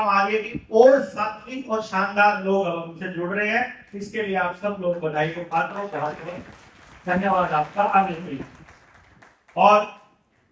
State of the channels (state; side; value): identical; both; correlation 1.00